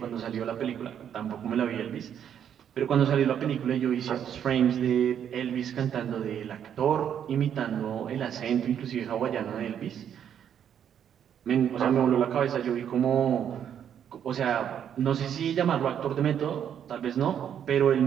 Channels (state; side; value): quieter; left; 9.0 dB